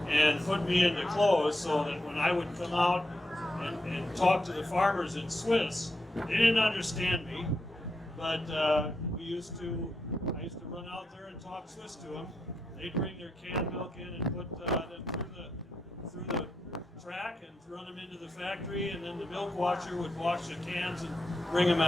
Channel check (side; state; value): both; normal; correlation 0.83